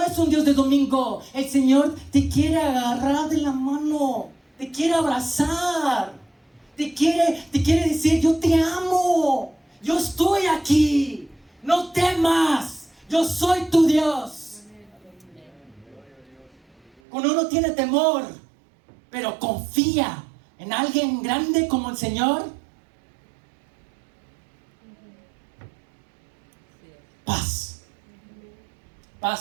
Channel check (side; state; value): left; drops out; at 16.9 s